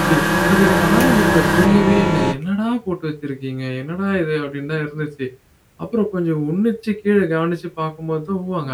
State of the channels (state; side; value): identical; both; correlation 1.00